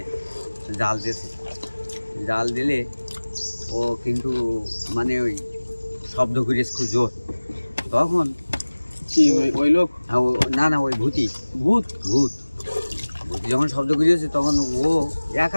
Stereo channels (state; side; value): inverted; both; correlation -1.00